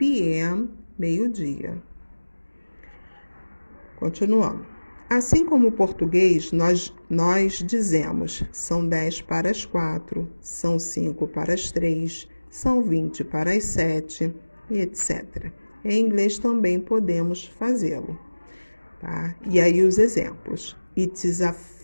meio-dia. Continuando. Assim como o português, nós dizemos são 10 para as 4, são 5 para as 3, são 20 para as 7, e etc. Em inglês também podemos fazê-lo, tá? E aí os exemplos. It is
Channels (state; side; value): inverted; both; correlation -1.00